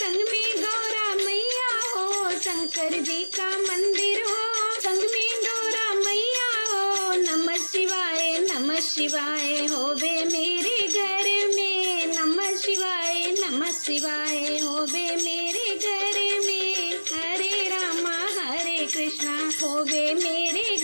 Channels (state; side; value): inverted; both; correlation -1.00